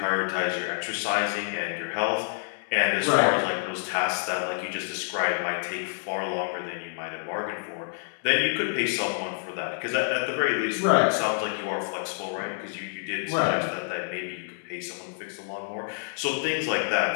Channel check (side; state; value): right; silent; digital silence